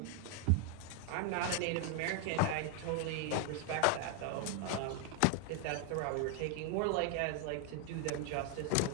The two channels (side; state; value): both; different; correlation 0.01